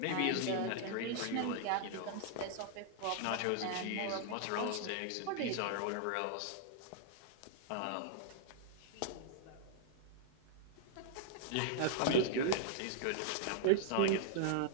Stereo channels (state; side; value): different; both; correlation -0.01